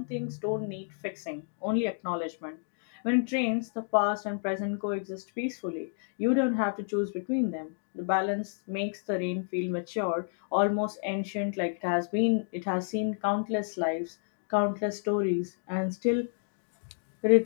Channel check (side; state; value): right; silent; digital silence